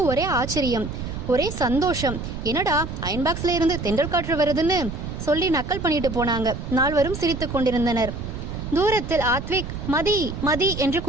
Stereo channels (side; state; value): right; noise; rumble, 7 dB below the sound